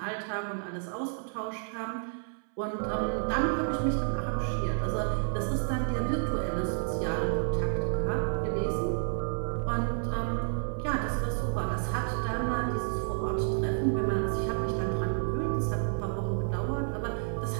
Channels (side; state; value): left; silent; 58 dB below the other